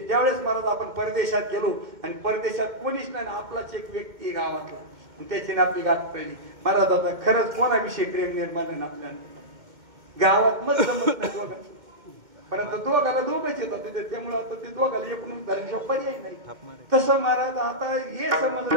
ज्यावेळेस महाराज आपण परदेशात गेलो आणि परदेशात कोणीच नाही, आपलाच एक व्यक्ती गावातला, आणि त्याची आपली गाठ पडली. महाराज आता खरंच कोणाविषयी प्रेम निर्माण आहे आपल्याला गावात मग जमत नाही दोघांचं, परंतु दोघाला दोघंच येतात तिथे, त्यामुळे आता ते दोघाला एकूण धरण्याचा पर्याय नाही. तसं महाराज आता हे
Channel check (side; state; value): left; late; 2.2 ms